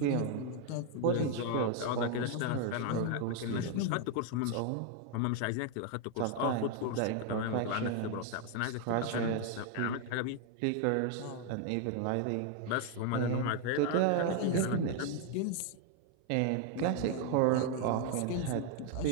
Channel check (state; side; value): different; both; correlation 0.01